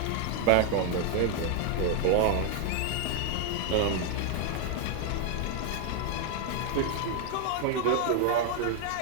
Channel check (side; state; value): both; different; correlation 0.01